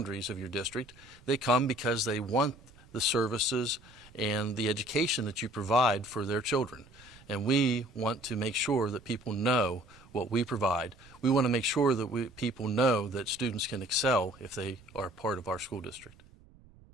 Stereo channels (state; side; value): noise; right; rumble, 25 dB below the sound